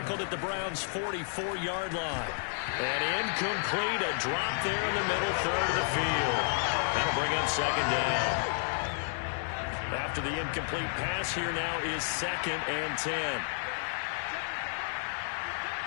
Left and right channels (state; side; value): silent; right; digital silence